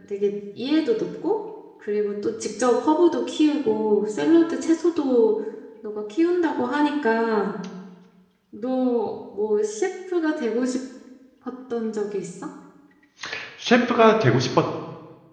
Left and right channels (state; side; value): identical; both; correlation 1.00